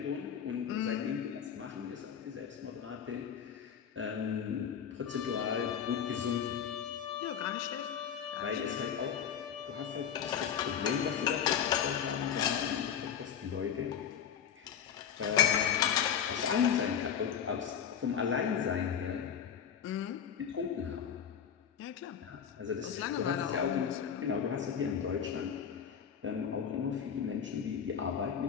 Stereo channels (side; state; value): right; quieter; 8.1 dB